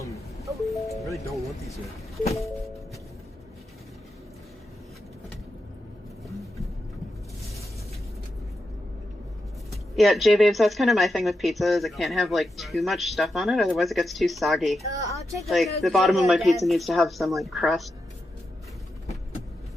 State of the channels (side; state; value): both; normal; correlation 0.87